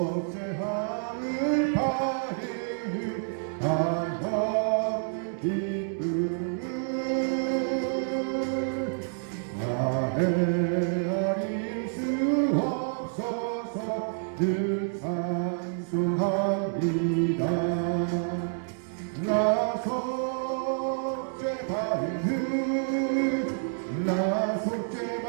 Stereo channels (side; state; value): left; silent; digital silence